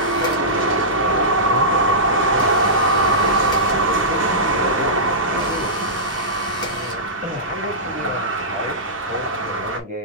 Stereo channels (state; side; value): normal; both; correlation -0.16